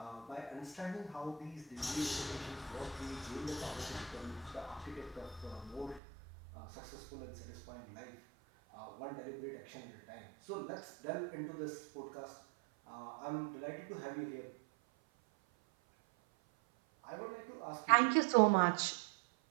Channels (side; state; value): left; drops out; at 6.0 s